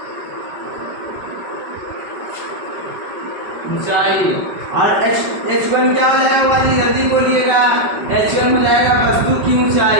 ऊंचाई। और H1 क्या हो जाएगा बुआ जी? जल्दी बोलिएगा। H1 हो जाएगा वस्तु की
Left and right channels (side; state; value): left; late; 5.2 ms